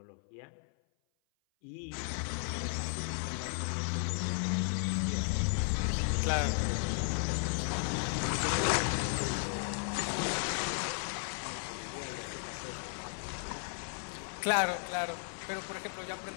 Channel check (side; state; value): right; silent; 55 dB below the other